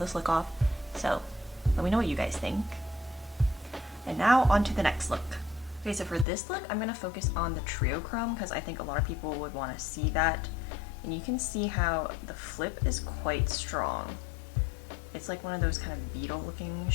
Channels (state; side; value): drops out; right; at 6.2 s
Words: look off. So let me know what you guys think. And now on to the next look. Okay, so for this look, I'm gonna focus on the trio chrome because I think a lot of people would want to see that. And you can see how the flip is quite strong. It's like one of those kind of beetle looking